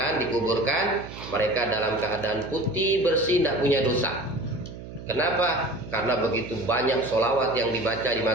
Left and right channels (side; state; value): right; noise; hum, 13 dB below the sound